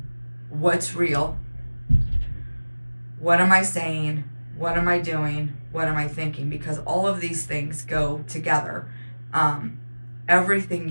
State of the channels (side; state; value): both; inverted; correlation -1.00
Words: what's real, what am I saying, what am I doing, what am I thinking, because all of these things go together. Everything